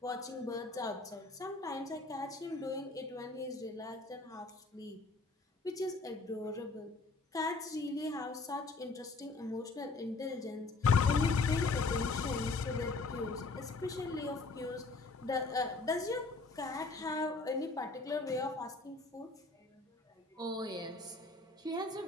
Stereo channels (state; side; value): quieter; right; 3.6 dB